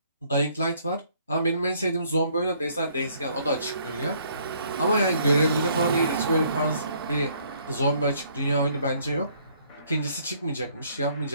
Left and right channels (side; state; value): both; inverted; correlation -0.64